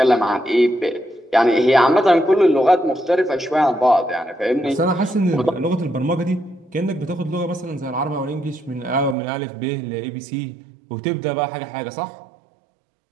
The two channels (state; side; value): drops out; left; at 9.2 s